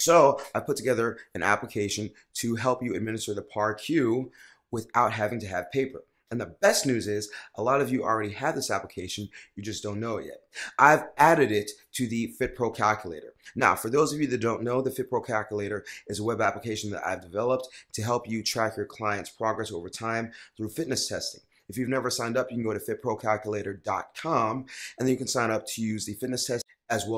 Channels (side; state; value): both; identical; correlation 1.00